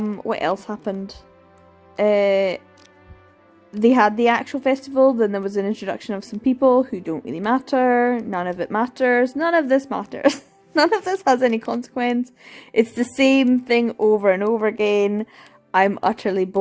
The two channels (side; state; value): both; identical; correlation 1.00